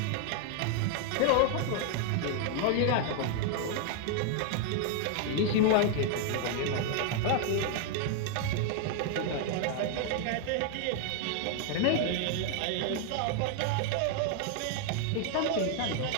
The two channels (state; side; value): different; both; correlation 0.00